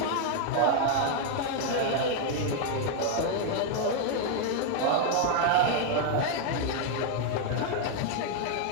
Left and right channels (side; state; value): both; different; correlation 0.00